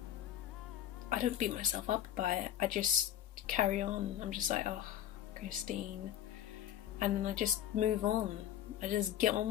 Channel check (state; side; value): quieter; right; 11.5 dB